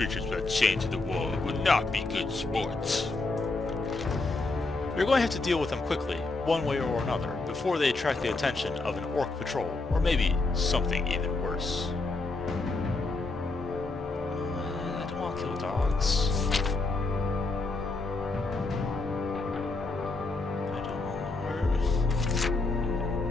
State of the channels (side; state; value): right; quieter; 3.4 dB